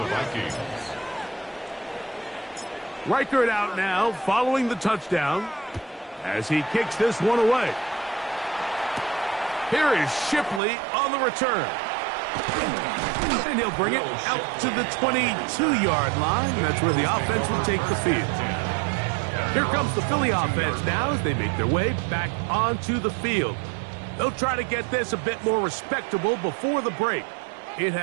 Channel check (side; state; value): left; drops out; at 10.6 s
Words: Vikings. Reichard out now following the touchdown as he kicks this one away. Here is Shipley on the return. And he'll bring it out to the 22-yard line. That's where the offense will take the field. Here comes the Philly offense now as they make their way back onto the field. They'll try to get this a bit more respectable before the break. It